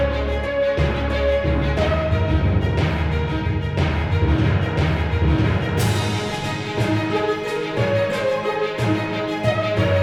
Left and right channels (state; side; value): identical; both; correlation 1.00